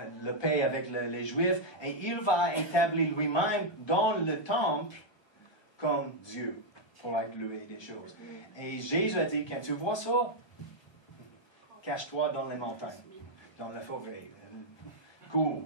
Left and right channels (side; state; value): right; late; 1.3 ms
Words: le paix avec les Juifs, et il va établir lui-même dans le temple comme Dieu, pour être loué des choses. Et Jésus a dit, quand tu vois ça, cache-toi dans les montagnes, dans la forêt,